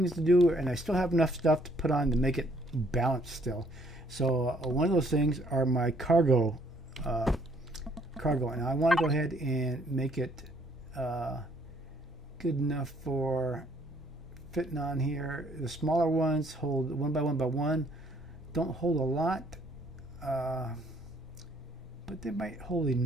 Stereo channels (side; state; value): both; normal; correlation 0.65